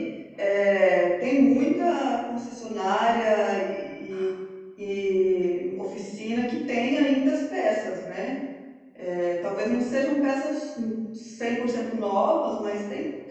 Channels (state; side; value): identical; both; correlation 1.00